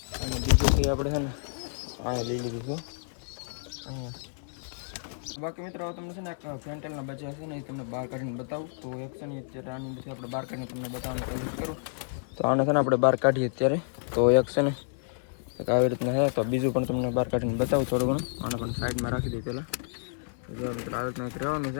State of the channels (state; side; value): silent; right; 58 dB below the other